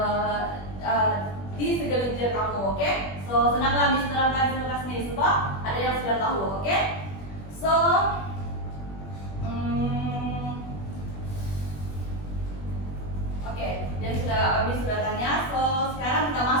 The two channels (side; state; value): right; late; 21 ms